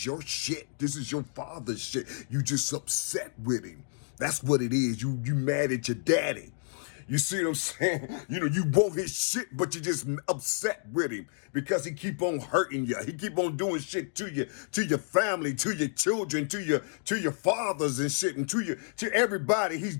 your shit. This is your father's shit. You just upset with him. That's what it is. You mad at your daddy. You see what I'm saying? You want his shit, but you just upset with him because he keep on hurting you. He keep on doing shit to you, to your family, to your children, to your fathers and shit, and to everybody. He's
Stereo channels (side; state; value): right; silent; digital silence